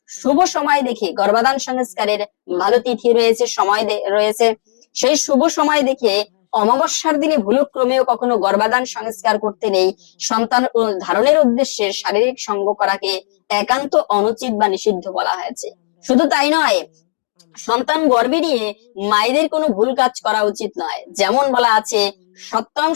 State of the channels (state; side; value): silent; right; digital silence